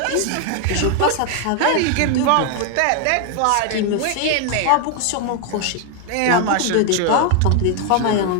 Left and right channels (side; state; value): both; different; correlation 0.00